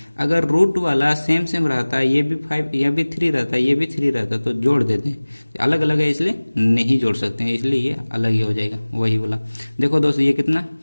अगर रूट वाला सेम रहता है, ये भी 5 यह भी 3 रहता है, ये भी 3 रहता है, तो जोड़ देते हैं, अलग अलग है इसलिए नहीं जोड़ सकते हैं, इसलिए ये अलग ही हो जाएगा वही वाला। देखो दोस्त ये कितना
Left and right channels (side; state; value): both; inverted; correlation -1.00